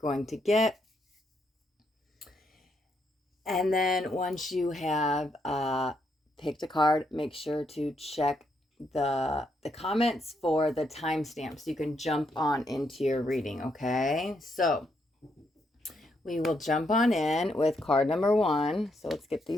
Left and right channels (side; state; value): both; normal; correlation 0.77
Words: to get. And then once you have picked a card, make sure to check the comments for the timestamp so you can jump on into your reading. Okay, so we will jump on in with card number 1. So let's get